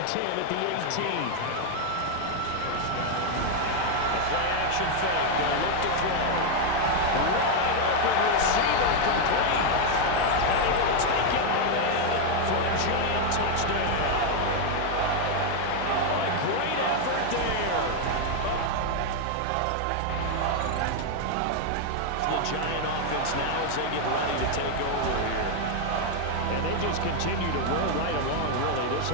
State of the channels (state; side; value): different; both; correlation 0.01